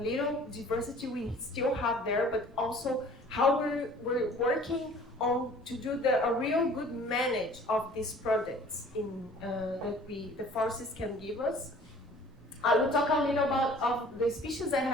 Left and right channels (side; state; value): both; normal; correlation 0.50